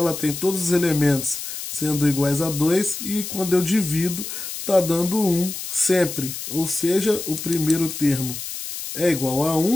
tem todos os elementos sendo iguais a 2 e quando eu divido está dando 1 sempre. Ou seja, o primeiro termo é igual a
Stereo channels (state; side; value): noise; left; hiss, 8 dB below the sound